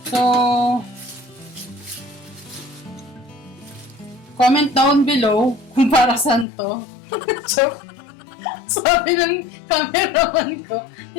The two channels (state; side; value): drops out; right; at 6.5 s